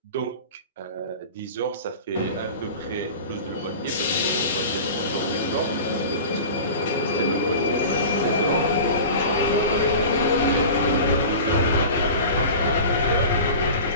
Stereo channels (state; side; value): inverted; both; correlation -0.35